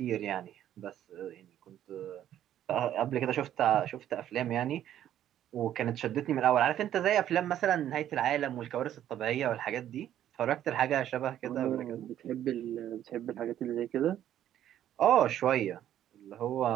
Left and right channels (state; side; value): quieter; left; 11.4 dB